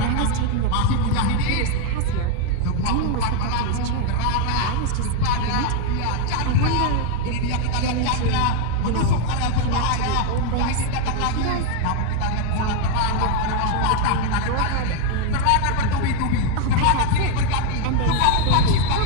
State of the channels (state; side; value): different; both; correlation 0.01